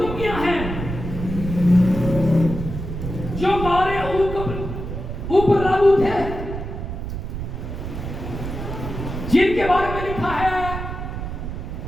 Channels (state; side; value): noise; right; rumble, 6 dB below the sound